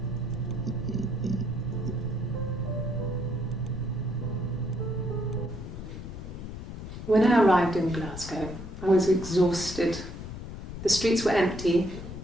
When I arrived in Glasgow, I was exhausted. The streets were empty.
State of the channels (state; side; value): noise; left; rumble, 9 dB below the sound